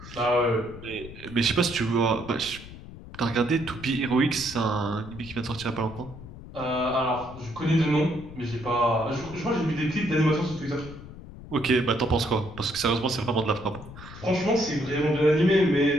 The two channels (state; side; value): noise; left; rumble, 15 dB below the sound